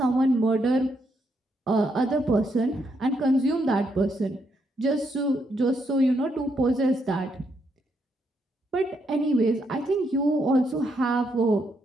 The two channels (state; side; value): normal; both; correlation 0.77